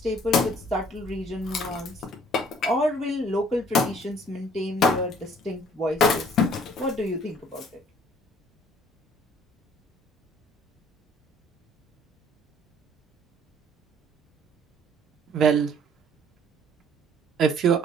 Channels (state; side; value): normal; both; correlation 0.57